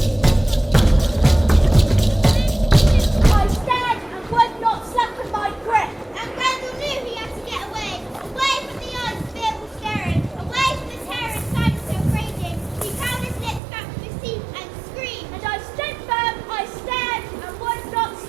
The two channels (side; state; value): left; drops out; at 13.6 s